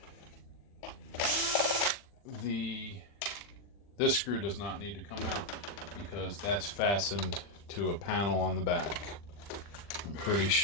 This screw does not need to come out because that's fastened to a panel on the back. I'm pretty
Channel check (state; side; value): late; right; 40 ms